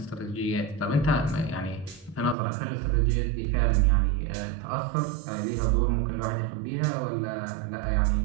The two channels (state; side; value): drops out; left; at 2.4 s